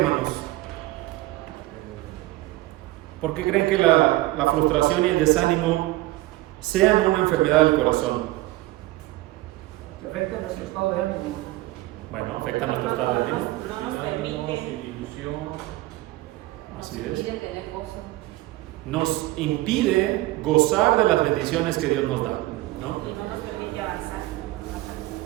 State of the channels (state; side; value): quieter; left; 18.2 dB